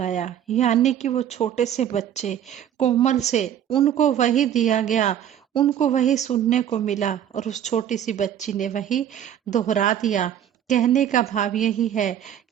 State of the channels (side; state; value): left; quieter; 10.0 dB